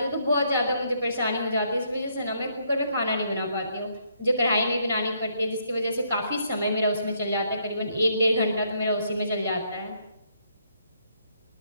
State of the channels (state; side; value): inverted; both; correlation -0.72